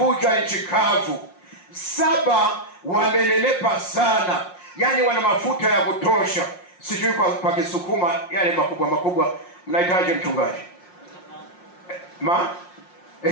nchi kavu. 7 wamenenepa sana, yani wana mafuta ya kutosha. Sijui kwa Kisukuma yale makubwa mnahitaji mchungaji?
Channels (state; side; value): late; right; 5.6 ms